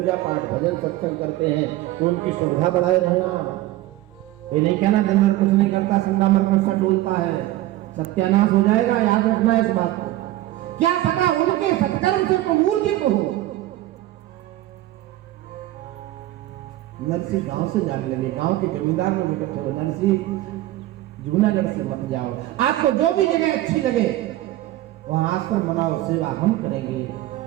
पाठ भजन सत्संग करते हैं तो उनकी सुविधा बढ़ाए रहना। ये नहीं कहना दिन भर कुछ नहीं करता, संडा मरकर सा डोलता है, सत्यानाश हो जाएगा। याद रखना है इस बात को। क्या पता उनके सत्कर्म से तो मूर्ति को हो। नरसी गांव से जाने लगे, गांव के जमींदार लोग इकट्ठे हो, नरसी जूनागढ़ से मत जाओ, आपको जो भी जगह अच्छी लगे वहां आश्रम बनाओ, सेवा हम करेंगे,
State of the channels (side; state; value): left; quieter; 15.7 dB